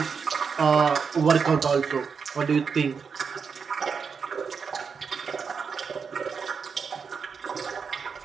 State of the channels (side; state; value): left; quieter; 5.9 dB